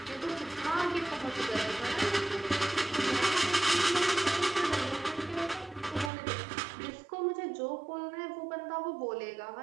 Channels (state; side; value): drops out; left; at 6.1 s